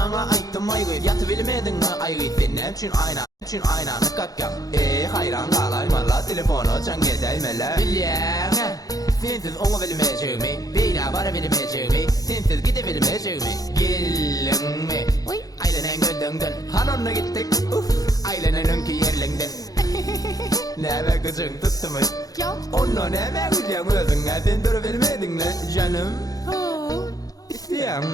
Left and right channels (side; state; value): right; late; 0.18 ms